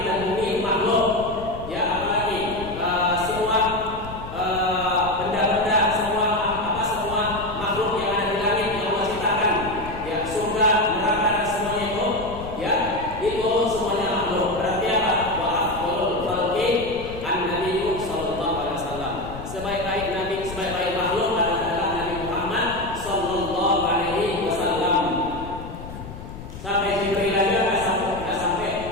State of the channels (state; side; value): noise; left; rumble, 12 dB below the sound